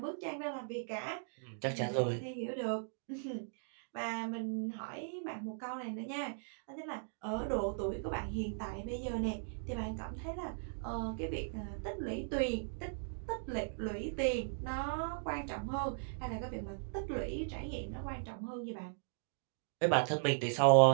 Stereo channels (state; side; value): silent; left; digital silence